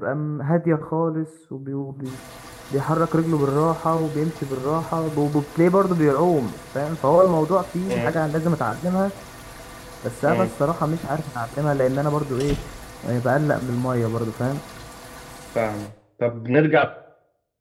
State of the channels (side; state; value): both; identical; correlation 1.00